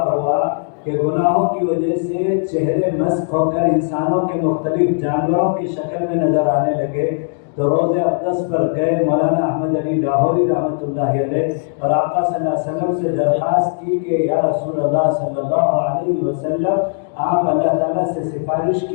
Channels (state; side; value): silent; right; digital silence